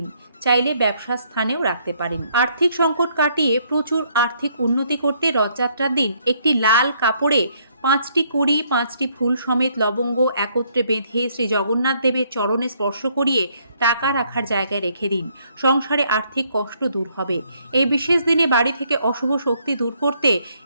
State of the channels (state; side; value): inverted; both; correlation -0.69